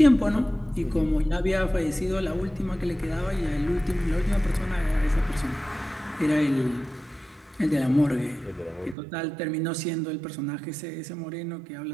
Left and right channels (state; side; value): drops out; left; at 9.0 s